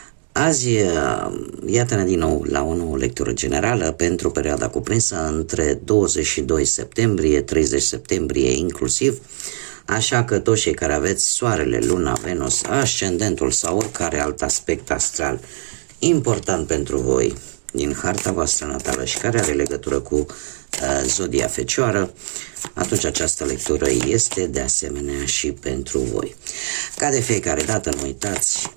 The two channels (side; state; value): left; silent; 65 dB below the other